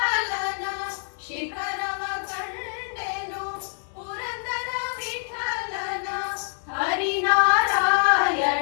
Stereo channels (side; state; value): right; silent; 56 dB below the other